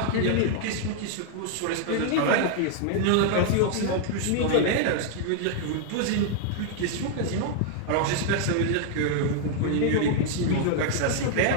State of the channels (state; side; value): different; both; correlation -0.01